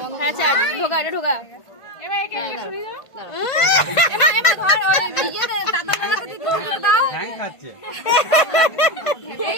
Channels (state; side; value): late; right; 1.5 ms